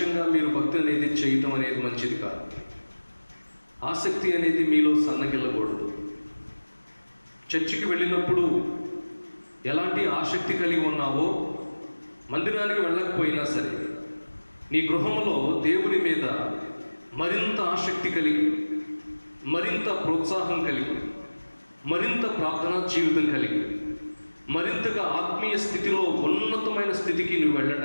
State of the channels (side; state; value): both; inverted; correlation -1.00